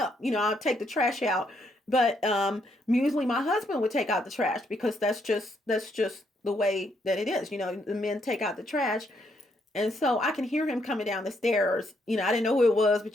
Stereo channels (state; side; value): normal; both; correlation 0.74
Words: I'll take the trash out. But usually my husband would take out the trash because that's just the way that it is. The men take out the trash. And so I can hear him coming down the stairs. I didn't know who it was,